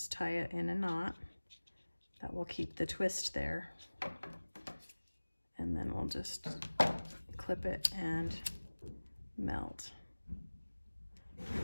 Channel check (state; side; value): inverted; both; correlation -1.00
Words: tie it in a knot. That will keep the twist there. And then we'll just clip it and melt.